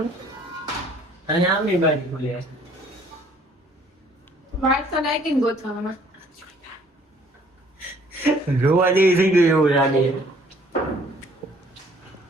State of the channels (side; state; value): both; normal; correlation 0.59